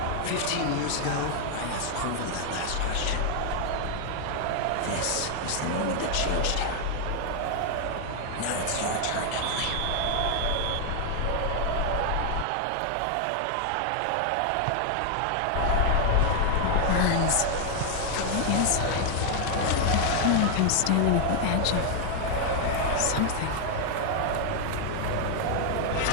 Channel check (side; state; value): both; different; correlation 0.00